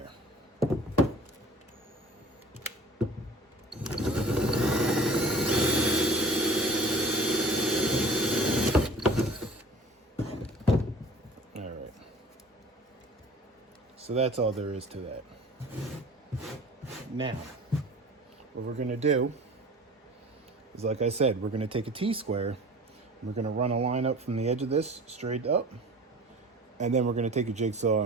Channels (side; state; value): both; normal; correlation 0.44